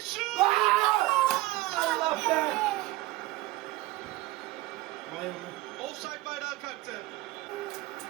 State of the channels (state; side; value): quieter; left; 18.1 dB